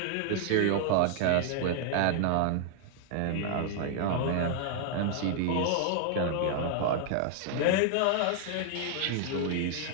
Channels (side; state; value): both; different; correlation 0.00